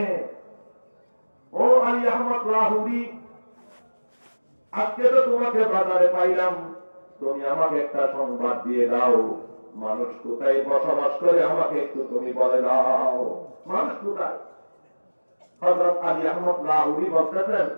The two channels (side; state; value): both; inverted; correlation -1.00